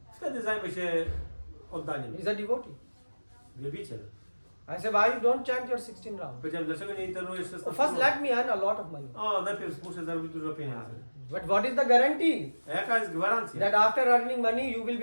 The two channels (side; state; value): both; inverted; correlation -1.00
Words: wtedy zajmę się oddaniem. He's a devotee. Wielbiciel. I said, why you don't chant your 16 rounds? Powiedziałem, dlaczego nie internujesz 16 First, rund? let me earn a lot of money. O, najpierw muszę zarobić dużo pieniędzy. But what is the guarantee A jaka jest gwarancja, that after earning money you will